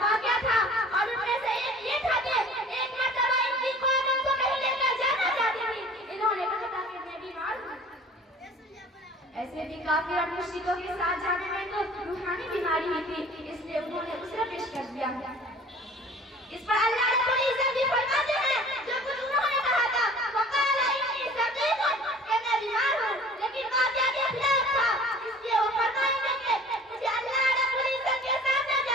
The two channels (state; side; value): normal; both; correlation 0.47